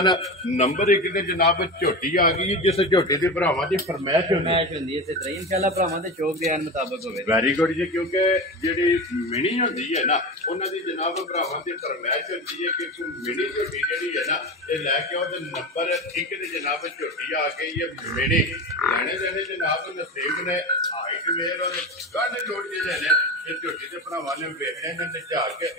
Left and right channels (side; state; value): both; normal; correlation 0.25